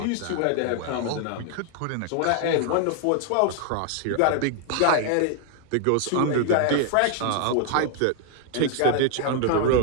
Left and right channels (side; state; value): both; different; correlation 0.00